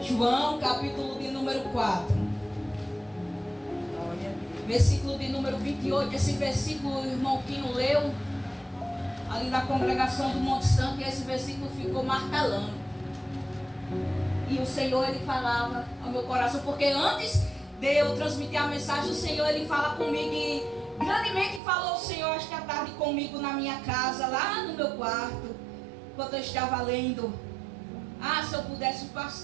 João, capítulo de número 4. Glória a Deus. Versículo de número 28. Esse versículo o irmão Quinho leu ali na congregação do Monte Santo, e esse versículo ficou martelando. E o Senhor, Ele falava ao meu coração, porque antes de eu transmitir a mensagem, o Senhor, Ele fala comigo, e grandemente falou o Senhor esta tarde comigo na minha casa, lá no meu quarto, enquanto eu estava lendo. Ah, se eu pudesse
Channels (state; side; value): drops out; left; at 21.6 s